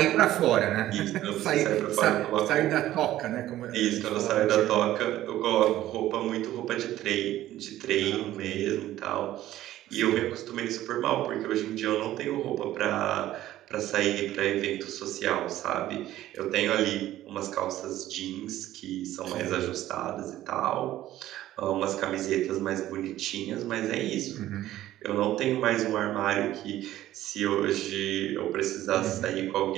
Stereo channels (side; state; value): left; quieter; 14.0 dB